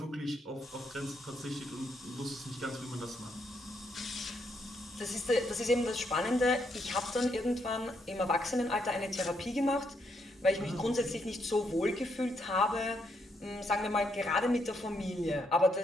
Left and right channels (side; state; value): both; normal; correlation 0.77